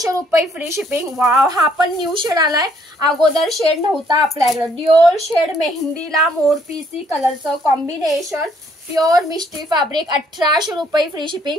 रुपये फ्री शिपिंग। वाव हा पण न्यू शेड आलाय, अगोदर शेड नव्हता आपल्याकडे। ड्युअल शेड मेहंदीला मोरपीसी कलरचं कॉम्बिनेशन, प्युअर मिष्टी फॅब्रिक, 1800 रुपये फ्री शिपिंग।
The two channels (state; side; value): normal; both; correlation 0.66